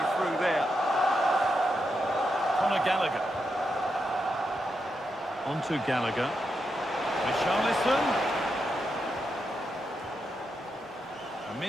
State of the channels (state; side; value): normal; both; correlation 0.85